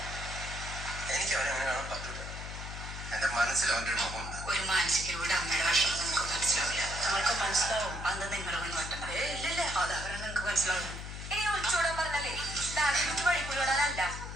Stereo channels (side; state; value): left; noise; hum, 8 dB below the sound